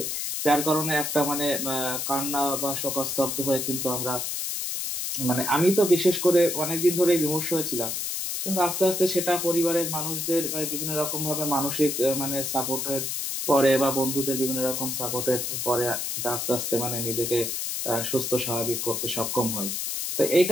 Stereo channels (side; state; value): left; noise; hiss, 2 dB below the sound